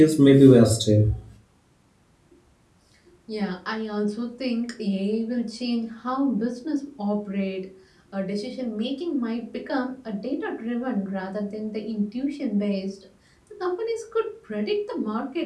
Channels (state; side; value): identical; both; correlation 1.00